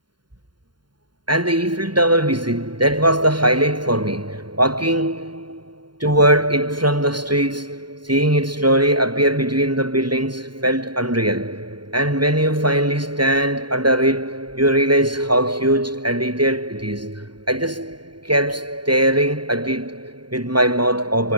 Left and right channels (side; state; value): left; late; 0.71 ms